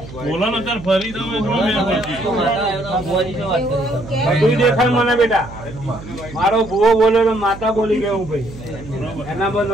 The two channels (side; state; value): right; noise; hum, 15 dB below the sound